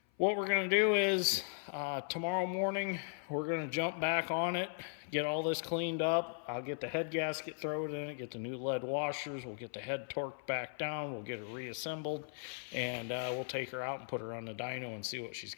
what we're going to do is tomorrow morning, we're going to jump back on it, get all this cleaned up. I'll get the head gasket, throw it in it, get the new lead washers. We'll get the head torqued back down. We'll get it reassembled, and we'll take her out and put her on the dyno and see what she's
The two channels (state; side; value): silent; right; 53 dB below the other